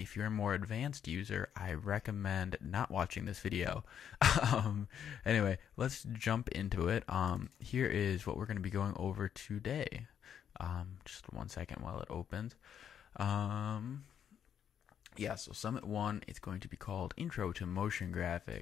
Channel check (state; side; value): quieter; right; 8.8 dB